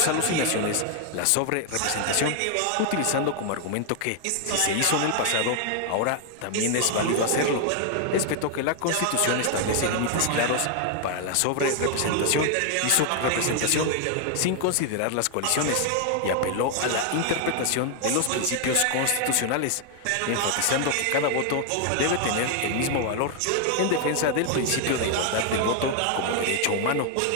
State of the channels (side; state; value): both; different; correlation 0.00